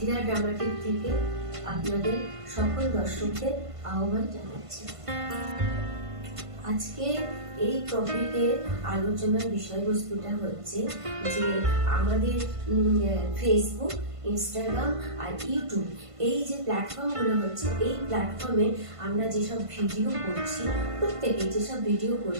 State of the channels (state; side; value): late; left; 1.5 ms